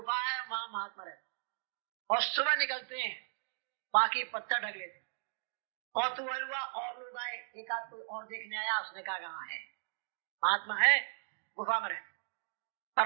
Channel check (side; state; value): left; silent; digital silence